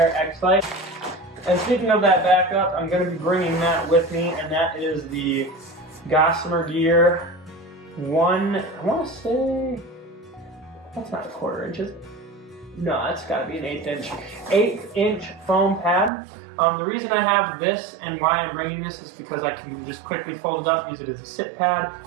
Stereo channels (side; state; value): left; drops out; at 16.1 s